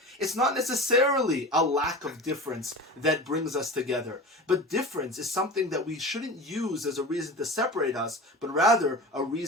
It's not necessarily a lack of difference that brings us together, but difference is something that we shouldn't use as a reason to separate us, but rather a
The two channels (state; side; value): normal; both; correlation 0.32